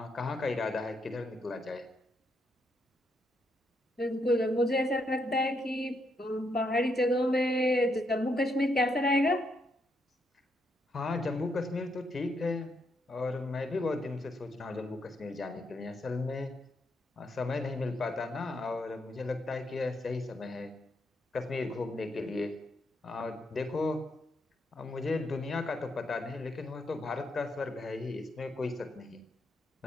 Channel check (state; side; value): normal; both; correlation 0.78